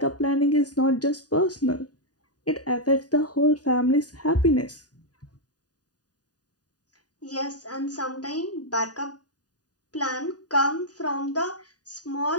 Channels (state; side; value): late; right; 0.68 ms